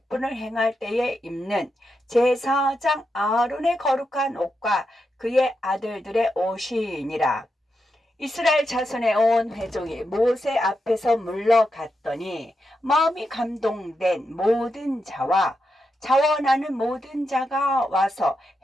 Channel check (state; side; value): normal; both; correlation 0.86